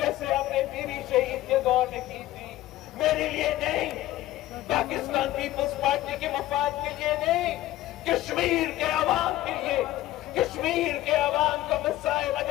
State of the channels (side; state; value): right; quieter; 15.5 dB